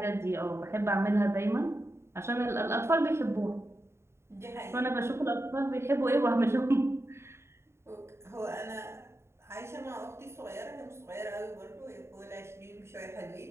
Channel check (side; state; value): left; late; 0.13 ms